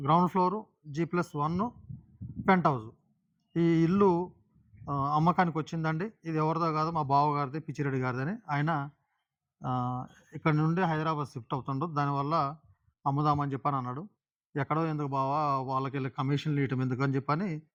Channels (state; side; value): identical; both; correlation 1.00